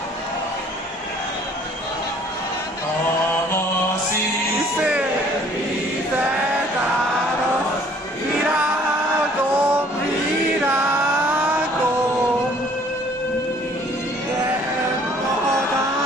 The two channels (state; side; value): normal; both; correlation 0.57